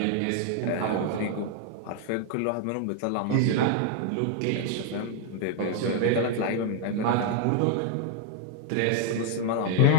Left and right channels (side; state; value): both; different; correlation 0.00